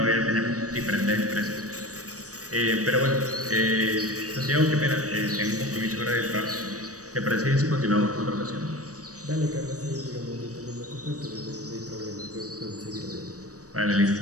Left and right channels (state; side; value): late; left; 0.66 ms